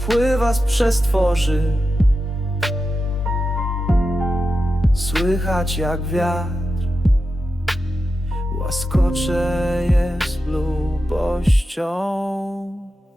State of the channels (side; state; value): both; normal; correlation 0.90